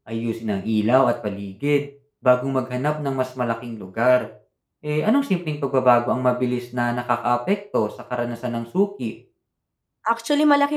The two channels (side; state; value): both; identical; correlation 1.00